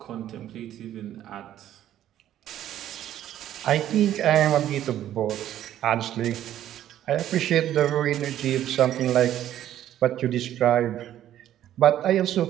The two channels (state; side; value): quieter; left; 11.9 dB